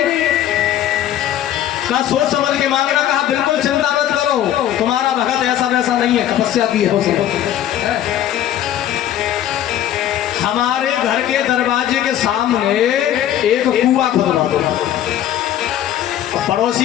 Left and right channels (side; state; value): right; quieter; 11.5 dB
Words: कहा सोच समझ के मांग रहा, कहा बिल्कुल चिंता मत करो, तुम्हारा भगत ऐसा वैसा नहीं है, तपस्या की है। हमारे घर के दरवाजे के सामने एक कुआं खुदवा दो,